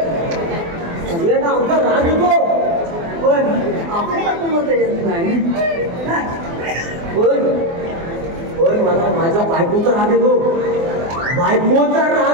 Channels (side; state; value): left; late; 24 ms